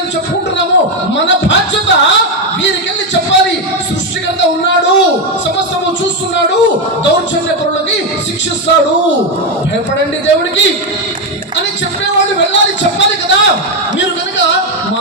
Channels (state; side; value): normal; both; correlation 0.07